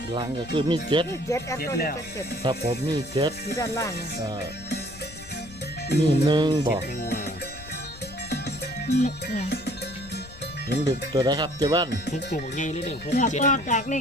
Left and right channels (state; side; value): noise; left; rumble, 18 dB below the sound